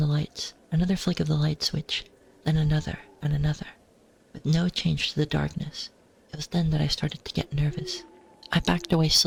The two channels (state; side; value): identical; both; correlation 1.00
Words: lights, another flick of the light switch, then another and another, with no change to the darkness. It was then that I started to get nervous. I backed away